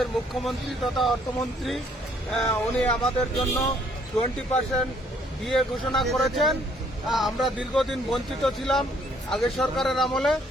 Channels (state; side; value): normal; both; correlation 0.65